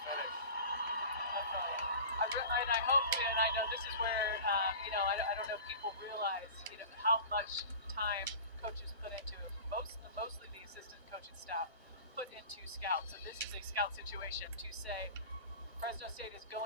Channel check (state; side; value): inverted; both; correlation -0.37